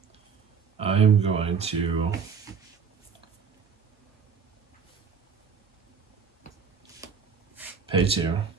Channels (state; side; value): quieter; left; 6.1 dB